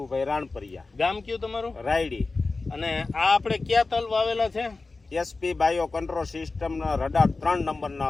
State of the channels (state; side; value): quieter; right; 3.7 dB